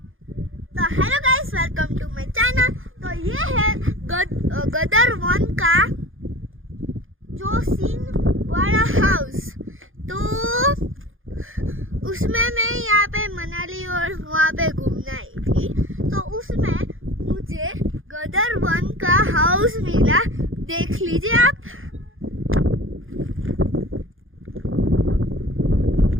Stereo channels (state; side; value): late; left; 0.59 ms